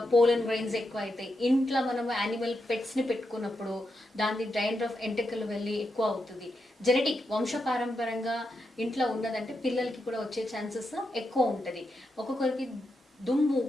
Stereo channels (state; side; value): normal; both; correlation 0.85